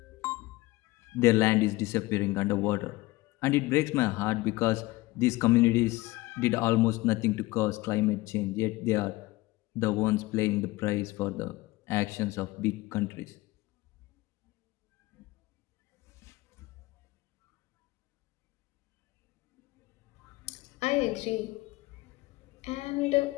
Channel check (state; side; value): quieter; right; 20.2 dB